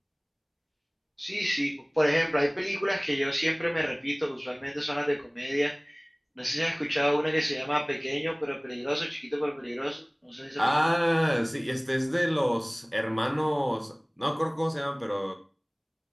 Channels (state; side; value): identical; both; correlation 1.00